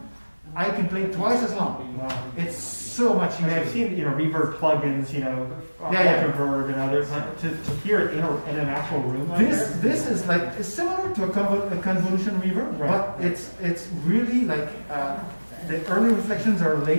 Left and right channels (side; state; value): both; inverted; correlation -1.00